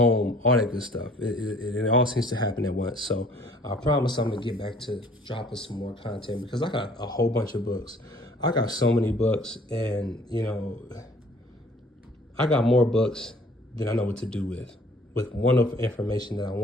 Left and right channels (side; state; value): both; normal; correlation 0.56